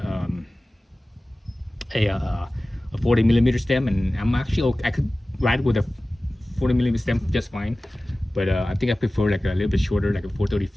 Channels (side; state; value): both; normal; correlation 0.97